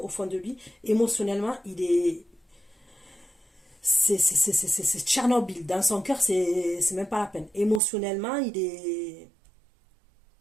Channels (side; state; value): left; drops out; at 7.8 s